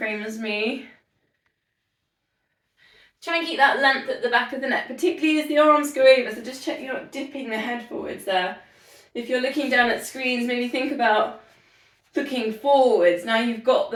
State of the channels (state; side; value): identical; both; correlation 1.00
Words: as me. Try and keep that length at the back of the neck, particularly as the arms go over, so just check you're not dipping the head forwards there. If you're looking down at screens, maybe think about looking forwards. Now you've got